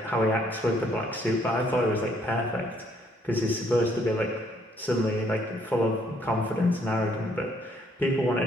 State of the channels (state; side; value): normal; both; correlation 0.67